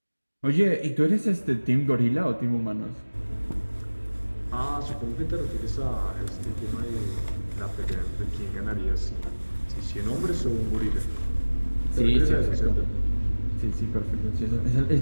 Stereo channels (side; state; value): both; inverted; correlation -1.00